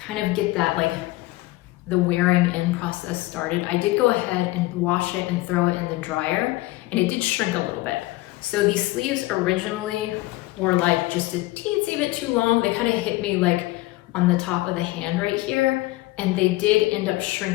of get that like the wearing in process started, I did go ahead and wash it and throw it in the dryer, and it did shrink a little bit. So these sleeves originally were like just a teensy bit too long. They kind of hit me like on the top of the hand right here, and they did end up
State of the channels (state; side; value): quieter; right; 19.3 dB